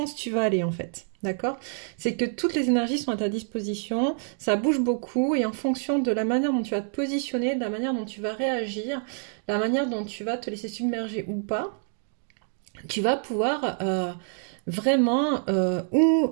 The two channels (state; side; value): silent; left; 60 dB below the other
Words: tu vas aller en fait. D'accord? C'est que toutes les énergies sont à ta disposition, ça bouge beaucoup et en fonction de la manière dont tu vas te positionner, de la manière dont tu vas réagir, la manière dont tu vas te laisser submerger ou pas, tu vas pouvoir vraiment